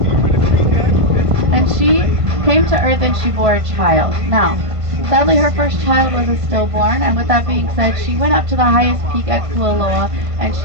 she came to Earth and she bore a child. Now, sadly, her first child was a stillborn, and with that being said, she went up to the highest peak at Kualoa and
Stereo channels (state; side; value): late; left; 1.5 ms